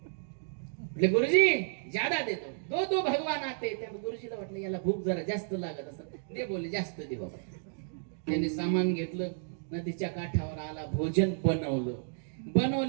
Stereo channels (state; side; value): silent; left; digital silence